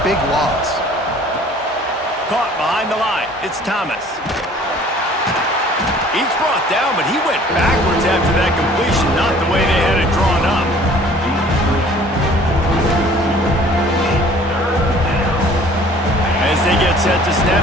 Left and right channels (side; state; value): both; normal; correlation 0.52